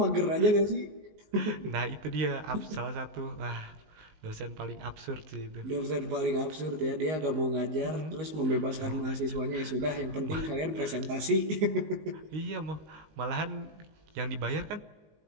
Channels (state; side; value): late; left; 19 ms